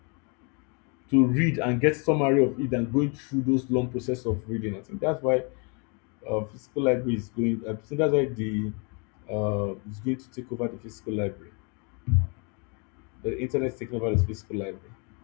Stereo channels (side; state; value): right; quieter; 34.3 dB